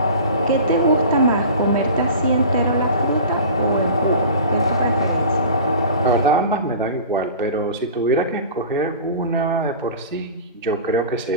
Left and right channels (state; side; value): inverted; both; correlation -0.38